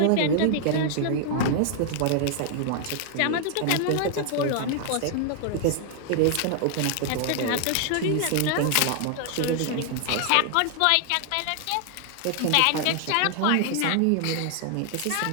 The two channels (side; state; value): both; different; correlation 0.00